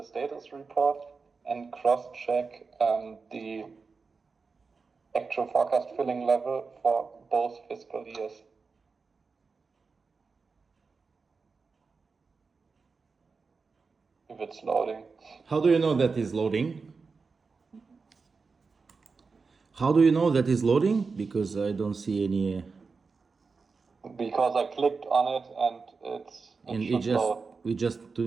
status report and cross-check the actual forecast filling level for both fiscal years. If it's loading. How do you know that is loading? How do you know that is loading? Because I don't see any. Because I clicked on it and it should load. We just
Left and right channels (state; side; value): quieter; left; 4.6 dB